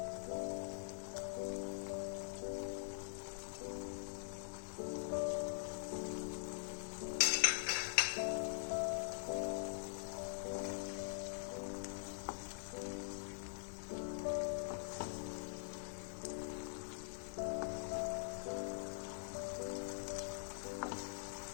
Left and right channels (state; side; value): silent; right; digital silence